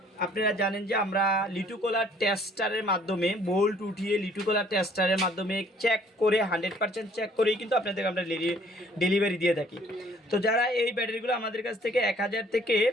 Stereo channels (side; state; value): both; normal; correlation 0.59